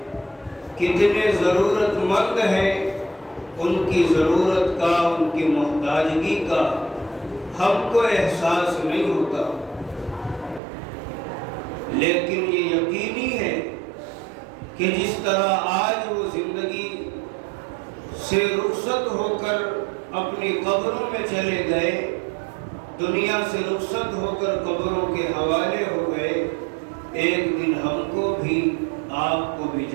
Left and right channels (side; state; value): left; drops out; at 10.6 s